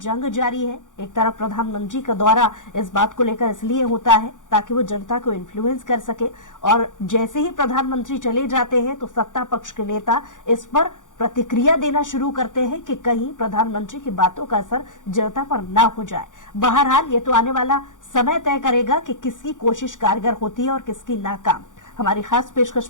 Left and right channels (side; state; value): right; late; 0.87 ms